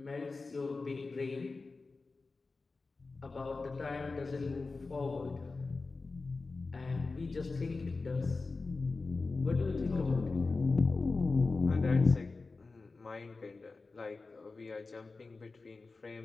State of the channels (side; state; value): right; quieter; 3.9 dB